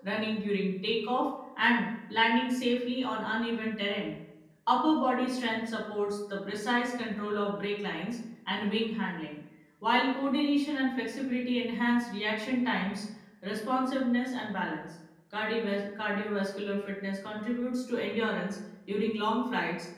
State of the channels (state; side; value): identical; both; correlation 1.00